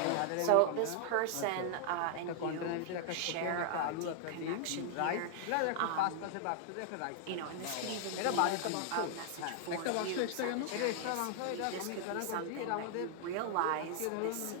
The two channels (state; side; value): different; both; correlation 0.00